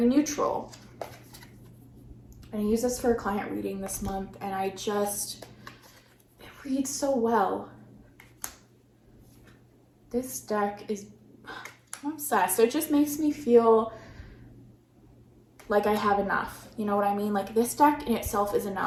neutral. And I use this for a client reading this month, and it reads so well. This deck is, I'm obsessed. It just makes me feel like I have enough. You know what I mean? Like, this deck in itself is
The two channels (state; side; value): identical; both; correlation 1.00